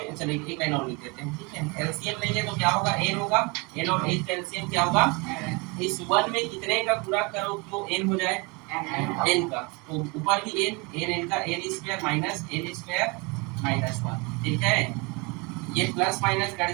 चलिए एक लाइन और लिख देते हैं, ठीक है। एलसीएम लेंगे तो क्या होगा, एन होगा, एन और एन का एलसीएम क्या होगा, इस वन में कितने का गुणा करो तो एन हो जाए, एन का, तो ऊपर भी एन का N square minus N square minus 1, ठीक है। ये प्लस माइनस कट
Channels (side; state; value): left; quieter; 28.6 dB